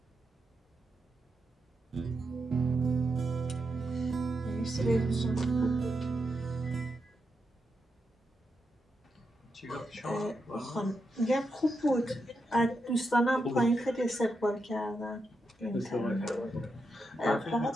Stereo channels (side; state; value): both; normal; correlation 0.85